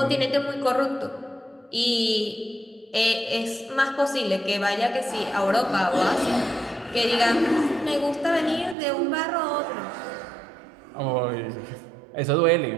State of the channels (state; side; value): drops out; left; at 8.8 s